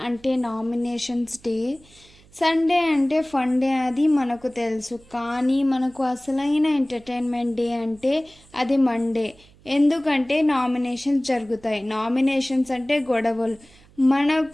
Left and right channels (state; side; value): noise; right; hum, 27 dB below the sound